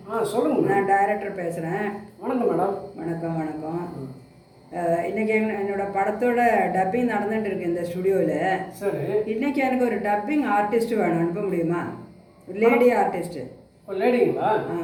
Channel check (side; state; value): both; identical; correlation 1.00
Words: சொல்லுங்க. நான் டைரக்டர் பேசுகிறேன். வணக்கம் மேடம். வணக்கம் வணக்கம். இன்றைக்கி என்னோடய படத்தோட டப்பிங் நடந்துகிட்டு இருக்கு இந்த ஸ்டுடியோவில். சரி. இன்றைக்கி எனக்கு ஒரு டப்பிங் ஆர்டிஸ்ட் வேணும், அனுப்ப முடியுமா? ஒரு லேடி ஆர்டிஸ்ட்டு. ஒரு லேடிங்களா?